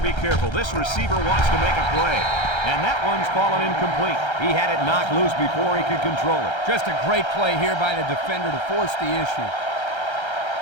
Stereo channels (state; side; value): late; right; 1.3 ms